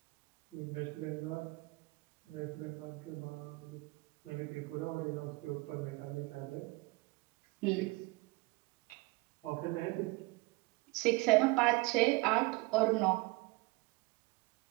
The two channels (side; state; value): left; quieter; 24.0 dB